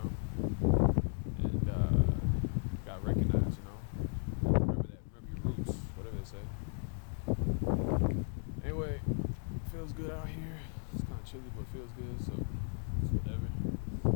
And got recognized. Remember your roots, whatever they say. Anyway, feels good out here. It's kind of chilly, but it feels good, so it's whatever.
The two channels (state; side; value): silent; right; 54 dB below the other